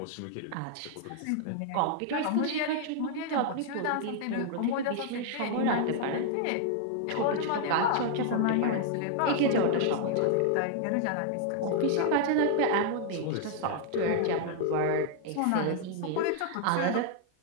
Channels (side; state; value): both; different; correlation 0.00